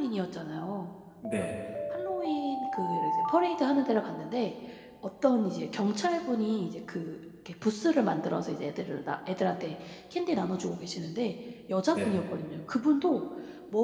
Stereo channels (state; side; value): identical; both; correlation 1.00